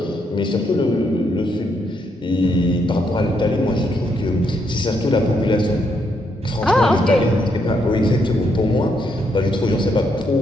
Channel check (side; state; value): both; normal; correlation 0.76